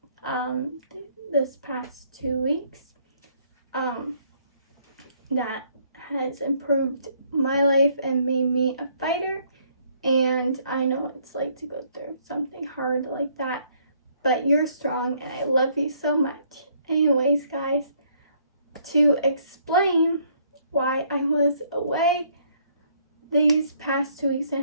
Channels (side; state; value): both; inverted; correlation -0.66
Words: this past 2 weeks that has improved my life and made me a fighter. And I know what it's like to go through something hard like that, but you're strong and I love you so much. Anyways, guys, to explain why I was away these past 2 weeks